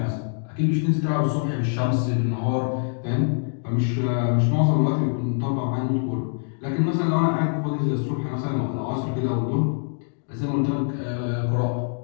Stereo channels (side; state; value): right; silent; digital silence